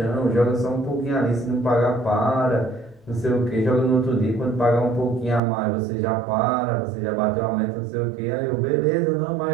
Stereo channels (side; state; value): left; drops out; at 5.4 s